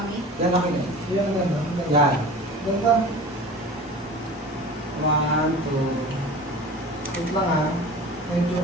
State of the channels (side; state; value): both; normal; correlation 0.37